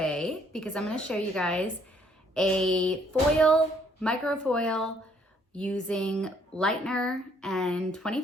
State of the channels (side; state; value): both; normal; correlation 0.65